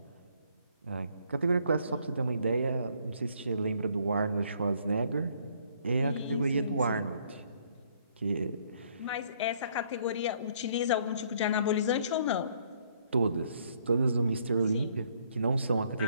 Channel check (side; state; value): both; inverted; correlation -0.65